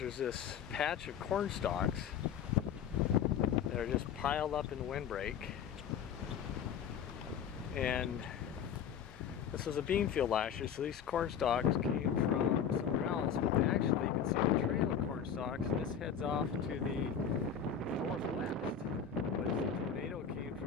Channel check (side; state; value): right; quieter; 7.7 dB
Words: this patch of corn stalks that are just piled up in the windbreak. And this was a bean field last year, so these corn stalks came from somewhere else, but they actually, you can see the trail of corn stalks, and this heads off to the northwest. But the tornado came